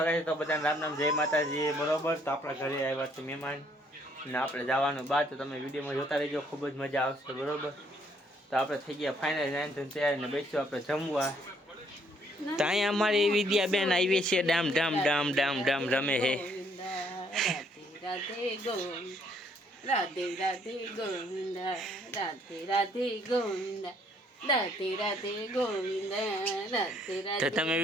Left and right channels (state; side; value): normal; both; correlation 0.66